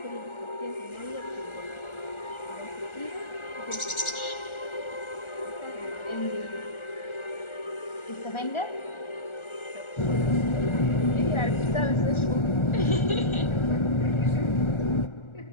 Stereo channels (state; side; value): late; right; 1.4 ms